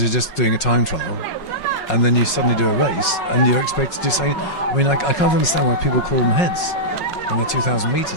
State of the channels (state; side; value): late; right; 5.5 ms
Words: you're just doing a time trial, and then you suddenly do a race and you're expected to do something. I mean, I can't understand why people call them heads when they're 2,000